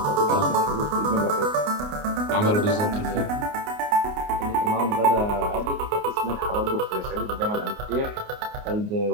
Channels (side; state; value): left; late; 29 ms